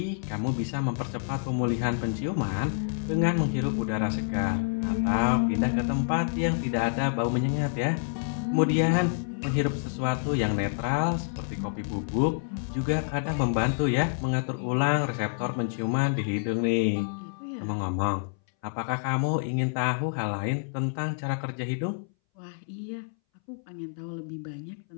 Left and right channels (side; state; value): right; silent; 59 dB below the other